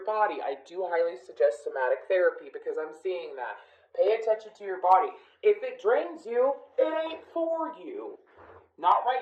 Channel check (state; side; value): identical; both; correlation 1.00